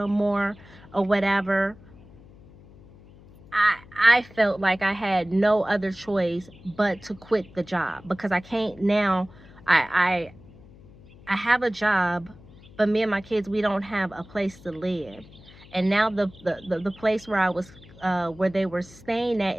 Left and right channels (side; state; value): left; noise; hum, 22 dB below the sound